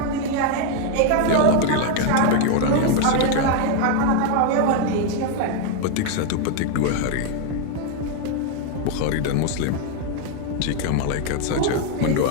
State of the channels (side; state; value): both; different; correlation 0.01